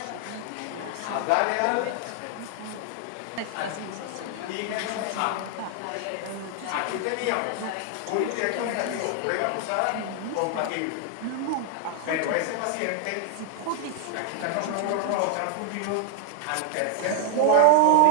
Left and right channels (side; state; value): both; different; correlation 0.00